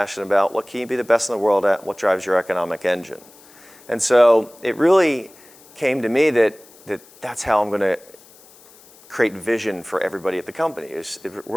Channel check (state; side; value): noise; left; hiss, 25 dB below the sound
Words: about? What can you be the best in the world at? What drives your economic engine? And so it really came to me that's how I'm going to create vision for everybody at the company. We're